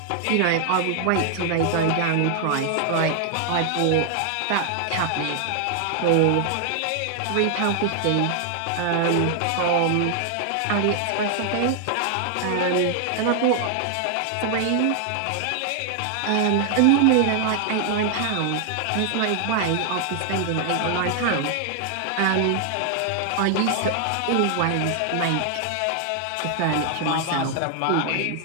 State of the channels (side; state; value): both; different; correlation 0.00